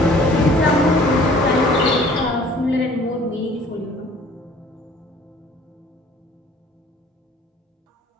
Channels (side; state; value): both; normal; correlation 0.53